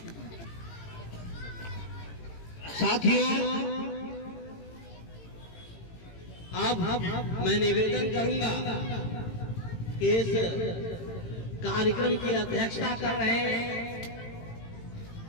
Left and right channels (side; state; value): right; late; 18 ms